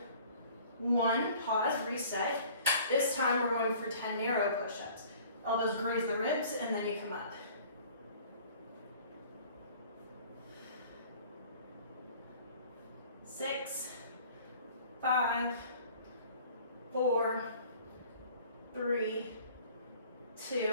1. Pause, reset. This time we're going for 10 narrow push-ups. Elbows graze the ribs and then you come up. 6, 5, 4, 3,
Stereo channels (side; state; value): both; inverted; correlation -0.50